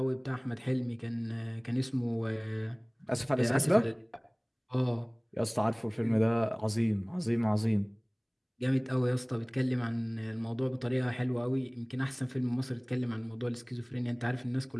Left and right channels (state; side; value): identical; both; correlation 1.00